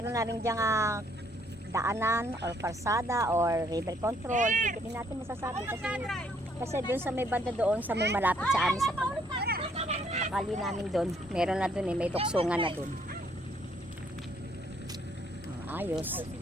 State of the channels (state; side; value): normal; both; correlation 0.67